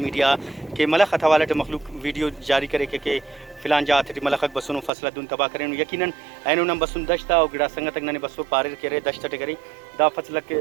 کے ملخ حوالہ مخلوق ویڈیو جاری کرے کہ فلان جات ملخ بسن فصل دن تباہ کریں یقیناً اینو نم بسن دشتا اور گڑا سنگت ننے بسو پارر کرے دشت کرے دا فصل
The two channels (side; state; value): left; drops out; at 4.9 s